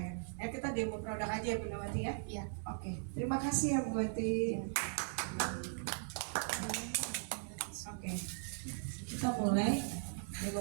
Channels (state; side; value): silent; left; 52 dB below the other